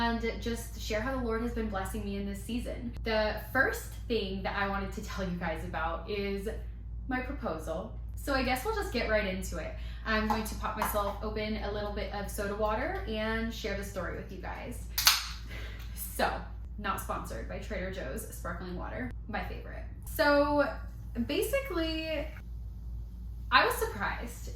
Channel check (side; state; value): both; identical; correlation 1.00